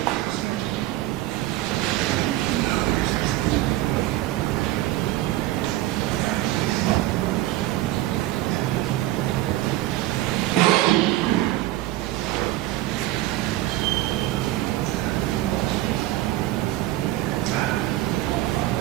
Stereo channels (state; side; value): quieter; left; 16.0 dB